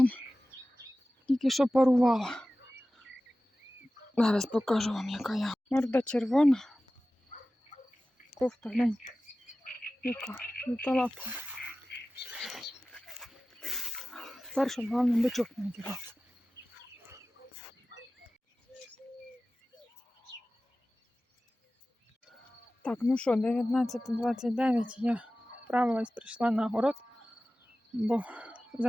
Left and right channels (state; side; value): normal; both; correlation 0.96